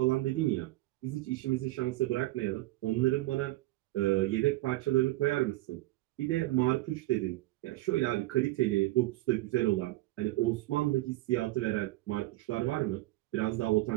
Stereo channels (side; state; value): left; quieter; 18.6 dB